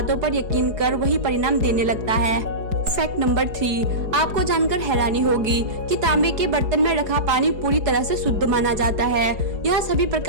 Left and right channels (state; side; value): late; left; 4.8 ms